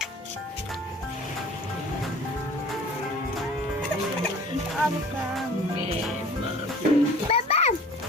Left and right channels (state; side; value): normal; both; correlation 0.45